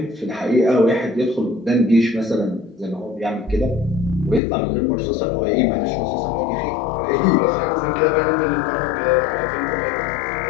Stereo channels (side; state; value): right; drops out; at 4.4 s